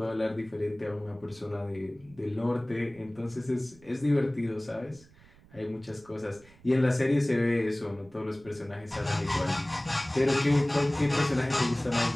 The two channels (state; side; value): noise; right; rumble, 25 dB below the sound